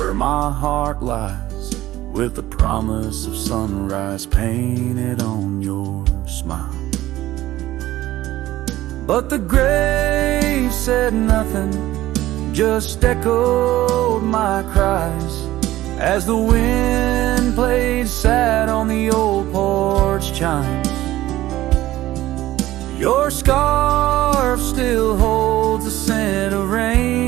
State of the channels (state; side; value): quieter; left; 15.4 dB